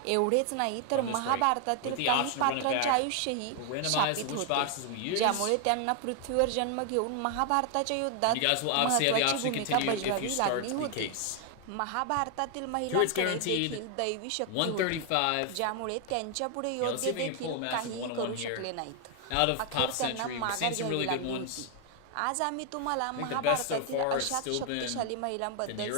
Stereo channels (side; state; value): both; different; correlation 0.00